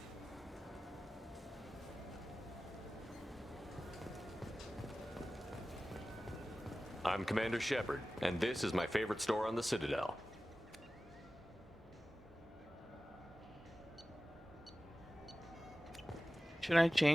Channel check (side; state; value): both; normal; correlation 0.96